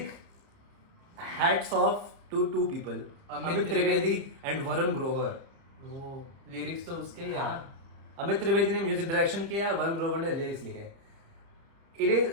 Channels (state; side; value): late; left; 30 ms